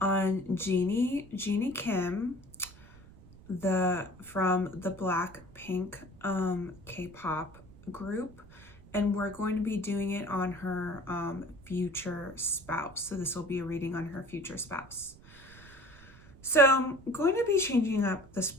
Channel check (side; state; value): right; noise; rumble, 21 dB below the sound